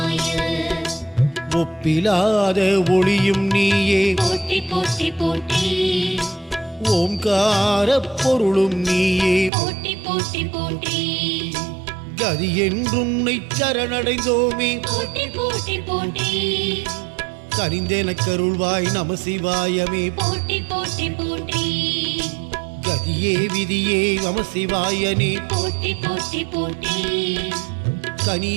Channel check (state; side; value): drops out; left; at 9.5 s